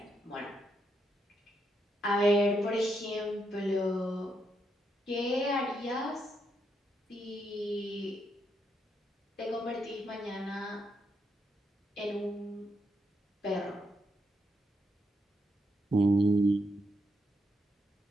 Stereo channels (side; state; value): both; normal; correlation 0.79